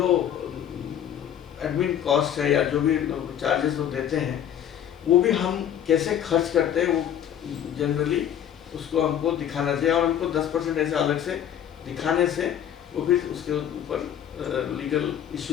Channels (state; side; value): quieter; right; 10.0 dB